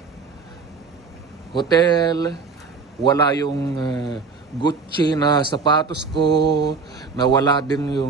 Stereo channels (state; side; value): quieter; left; 4.8 dB